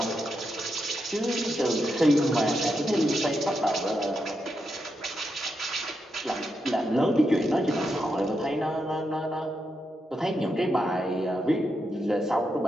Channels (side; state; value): both; normal; correlation 0.84